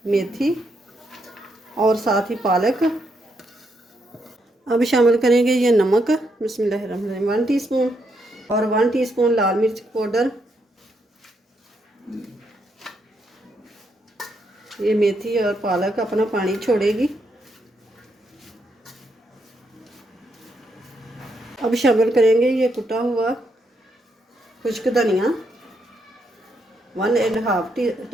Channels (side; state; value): both; normal; correlation 0.78